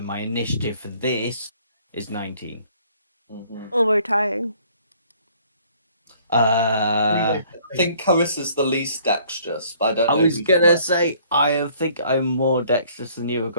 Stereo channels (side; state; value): both; inverted; correlation -0.59